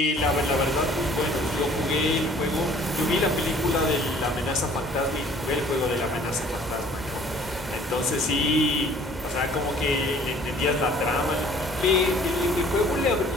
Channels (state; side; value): normal; both; correlation 0.54